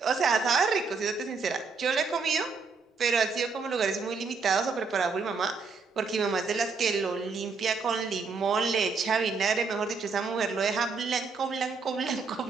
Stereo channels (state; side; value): quieter; left; 4.8 dB